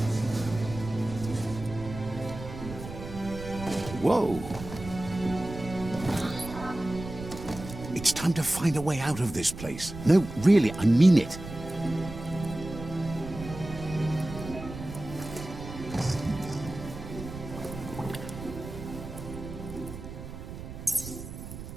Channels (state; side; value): noise; right; rumble, 11 dB below the sound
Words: Whoa! It's time to find a way out of this place. No, really, I mean it.